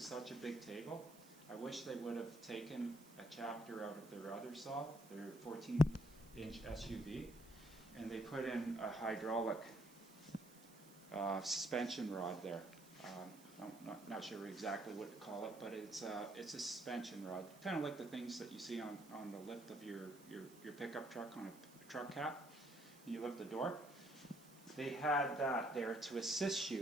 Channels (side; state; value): right; noise; hiss, 22 dB below the sound